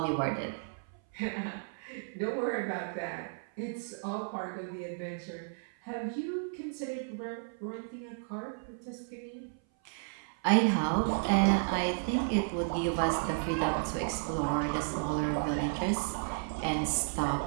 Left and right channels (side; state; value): left; silent; 56 dB below the other